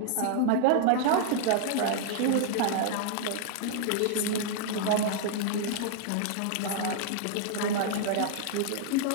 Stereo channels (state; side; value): different; both; correlation 0.00